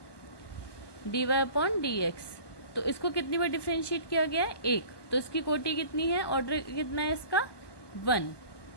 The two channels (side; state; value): right; late; 1.2 ms